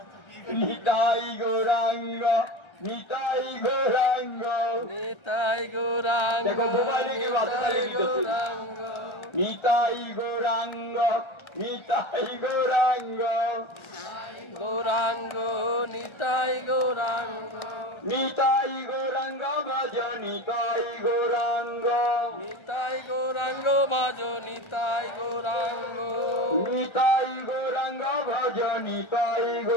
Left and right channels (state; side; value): late; right; 1.3 ms